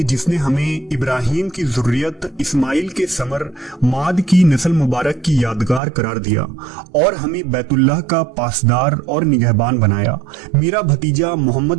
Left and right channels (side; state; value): left; drops out; at 5.8 s